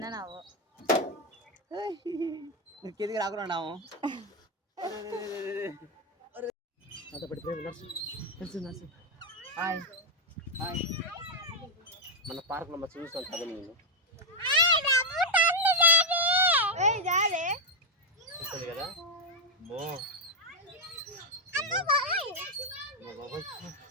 నవ్వు. కిందికి రాకున్నాము. Hi hi. మన పార్క్లో మంచి చూస్తాను కదా నేను చూస్తుంది కదా మో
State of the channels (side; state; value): both; normal; correlation 0.00